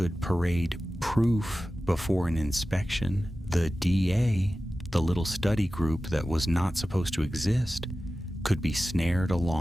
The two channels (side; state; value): both; normal; correlation 0.95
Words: parade proof before an inspection, the DA, the little study group that was not supposed to exist, could be snared